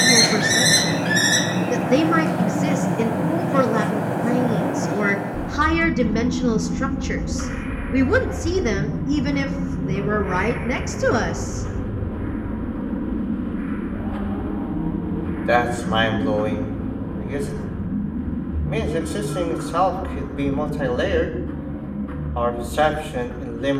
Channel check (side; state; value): both; identical; correlation 1.00